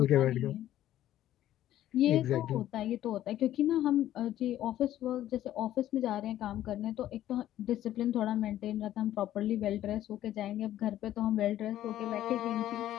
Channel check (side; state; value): right; quieter; 12.9 dB